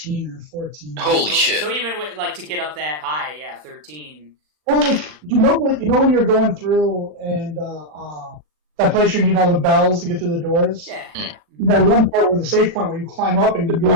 or 14. Holy shit! So even with, like to get up that high, yeah, 13. Well, like you know when you're going through and that place you need all the bells to get through the doors. Yeah. That one part where the safe point where you climb up and you're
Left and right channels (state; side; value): late; left; 39 ms